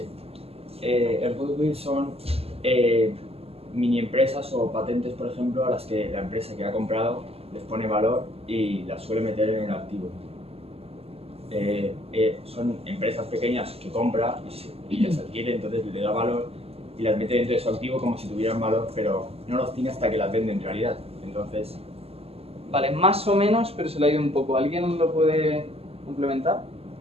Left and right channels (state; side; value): late; left; 0.29 ms